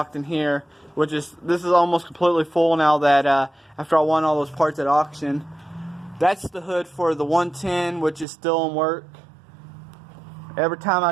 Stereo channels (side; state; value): left; drops out; at 8.2 s